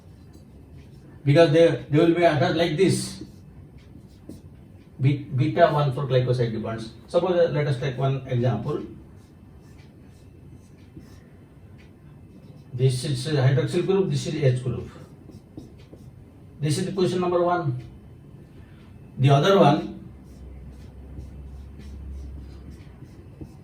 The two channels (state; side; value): identical; both; correlation 1.00